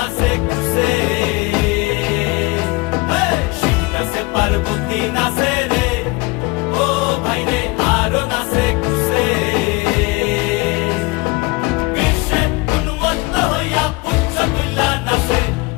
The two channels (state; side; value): quieter; right; 24.9 dB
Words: খুশে। শিব নাচে পার্বতী নাচে রে, ও ভাই রে আরো নাচে খুশে। বিশ্বে উন্মত্ত হইয়া পুচ্ছ তুল্লা নাচে,